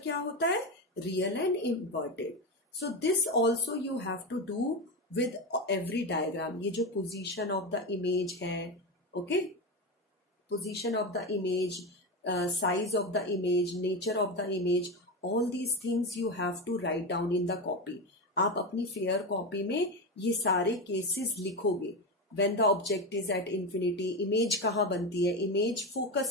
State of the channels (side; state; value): both; normal; correlation 0.17